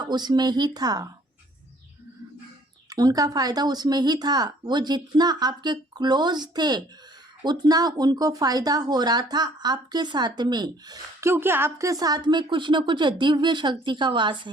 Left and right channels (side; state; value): both; normal; correlation 0.58